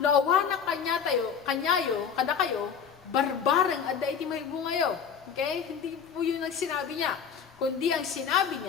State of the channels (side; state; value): right; quieter; 7.1 dB